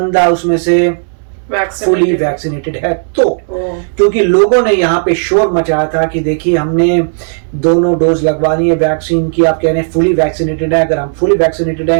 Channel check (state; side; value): silent; left; digital silence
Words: उसमें से फुली वैक्सीनेटेड है तो, क्योंकि लोगों ने यहाँ पे शोर मचाया था कि देखिए हमने दोनों डोज लगवानी है वैक्सीन की, आप कह रहे हैं फुली वैक्सीनेटेड है, अगर हम फुली वैक्सीनेटेड